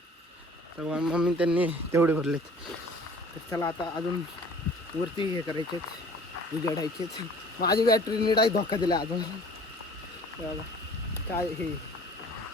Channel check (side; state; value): both; normal; correlation 0.49